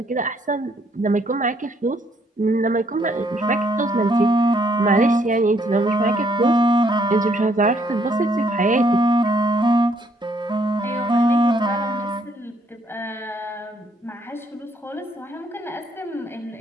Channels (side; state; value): both; normal; correlation 0.69